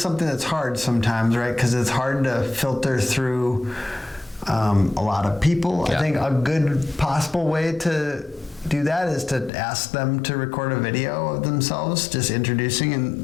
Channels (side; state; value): right; drops out; at 9.5 s